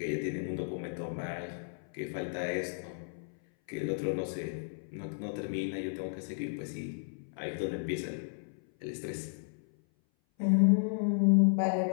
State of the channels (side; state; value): right; silent; 55 dB below the other